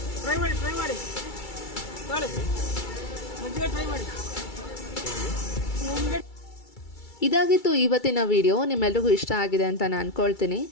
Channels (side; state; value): right; late; 2.3 ms